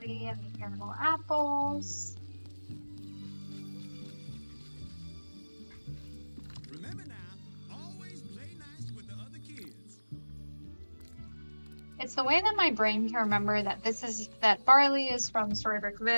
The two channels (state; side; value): inverted; both; correlation -1.00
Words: and the caramel apples. Remember now, always play nice with the other kids. It's the way that my brain can remember that that barley is from